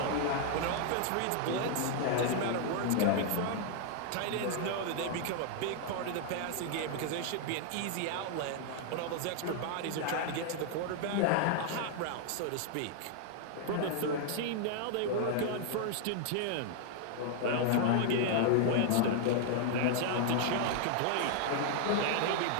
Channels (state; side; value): different; both; correlation 0.00